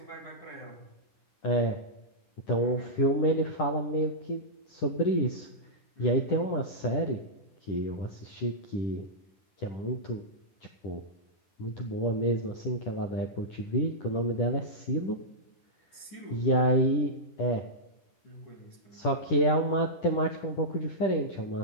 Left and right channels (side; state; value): right; late; 10 ms